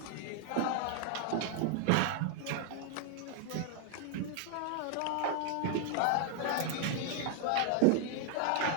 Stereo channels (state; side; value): different; both; correlation 0.00